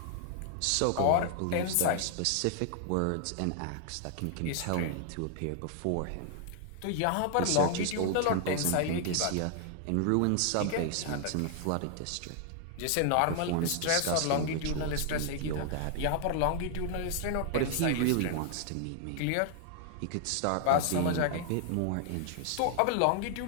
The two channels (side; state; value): both; different; correlation 0.00